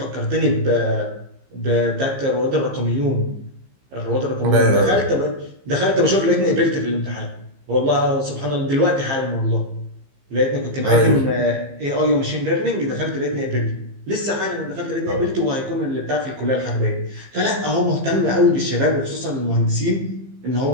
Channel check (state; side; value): late; left; 15 ms